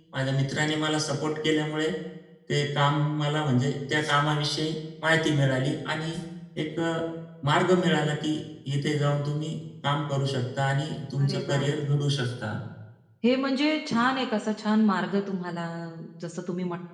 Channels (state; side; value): identical; both; correlation 1.00